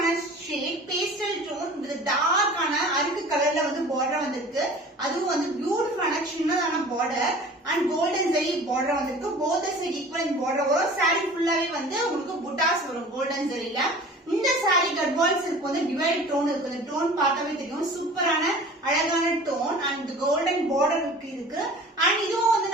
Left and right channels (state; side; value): normal; both; correlation 0.43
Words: shade pastel tone with dark ana arukku color la vandu border vandirukku adu vandu beautiful ana chinnadana border and golden zari border vandirukku both the side equal in border varum saree full ave vandu ungalku buttas varum golden zari la இந்த sorry Gadwal silk வந்து divide tone இருக்கு. இந்த tone பார்த்தாவே தெரியும் சூப்பரான அழகான tone and golden border இருக்கு. And இதுவும் வந்து